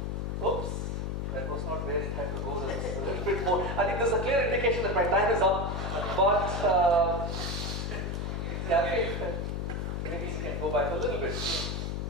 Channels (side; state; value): left; noise; hum, 2 dB below the sound